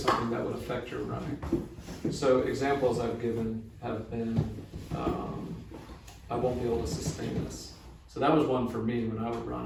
that would affect your running. So examples I've given have been, I won't be able to sustain this. So that was one for me when I would run.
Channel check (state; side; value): identical; both; correlation 1.00